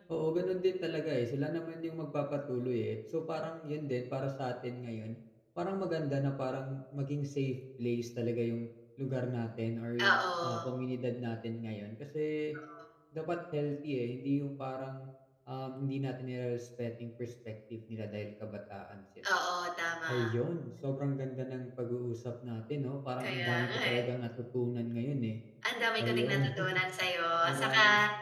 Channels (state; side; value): identical; both; correlation 1.00